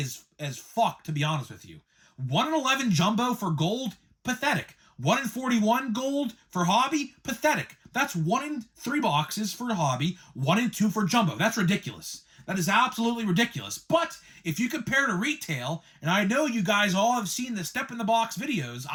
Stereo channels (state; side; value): identical; both; correlation 1.00